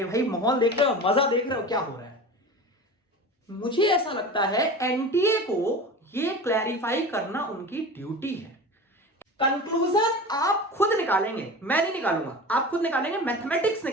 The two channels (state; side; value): normal; both; correlation 0.32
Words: भाई माहौल देख रहे हो, मजा देख रहे हो क्या हो रहा है। मुझे ऐसा लगता है एनटीए को ये क्लैरिफाई करना उनकी ड्यूटी है। कंक्लूजन आप खुद निकालेंगे, मैं नहीं निकालूंगा, आप खुद निकालेंगे, मैथमेटिक्स